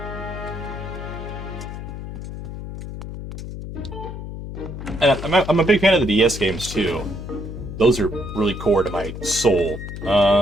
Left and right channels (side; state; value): left; noise; hum, 9 dB below the sound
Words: I'm a big fan of the DS games too. Those are really core to my soul.